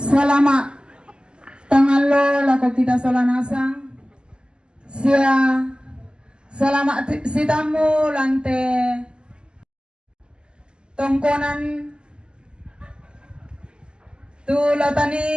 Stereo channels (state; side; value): late; left; 0.048 ms